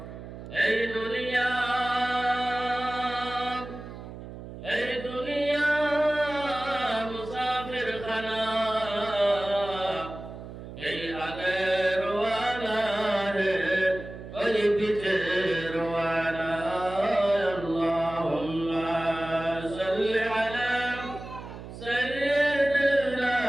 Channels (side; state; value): right; noise; hum, 12 dB below the sound